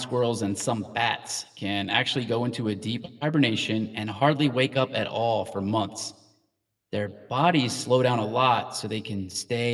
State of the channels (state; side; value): identical; both; correlation 1.00